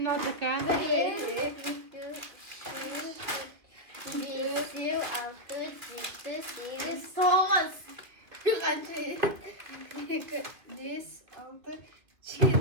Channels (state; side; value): late; left; 2.2 ms